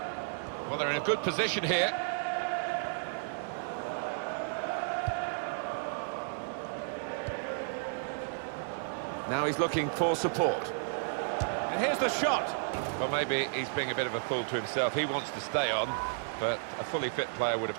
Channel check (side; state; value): left; silent; digital silence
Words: Well, they're in a good position here. Now he's looking for support. And here's the shot. Well, maybe he's being a bit of a fool to himself. He wants to stay on, but a fully fit player would